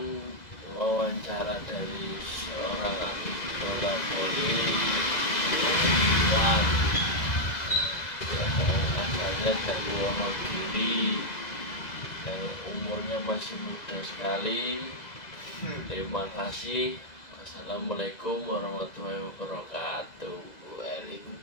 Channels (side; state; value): right; late; 2.0 ms